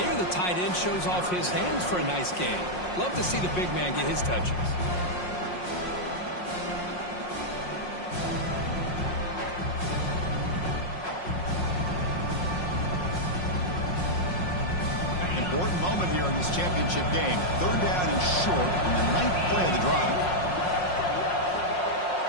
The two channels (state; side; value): late; right; 5.5 ms